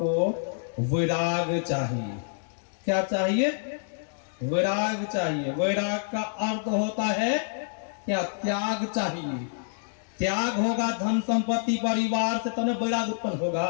वैराग चाहिए। क्या चाहिए? वैराग चाहिए। वैराग का अर्थ होता है क्या? त्याग चाहिए। त्याग होगा धन संपत्ति परिवार से तो न वैराग उत्पन्न होगा।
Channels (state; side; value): silent; right; digital silence